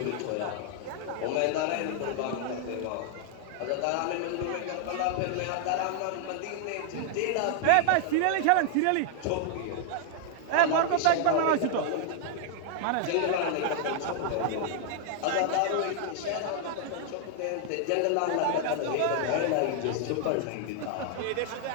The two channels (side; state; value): both; different; correlation 0.00